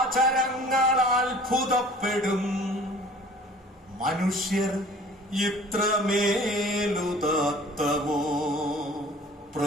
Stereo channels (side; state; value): both; normal; correlation 0.48